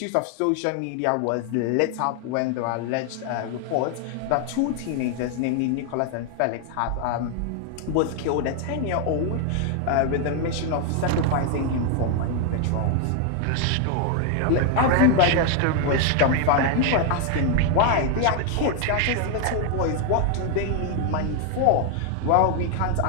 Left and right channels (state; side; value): different; both; correlation 0.01